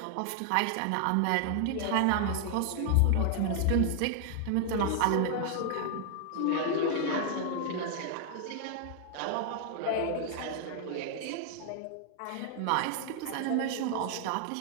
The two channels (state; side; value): different; both; correlation 0.00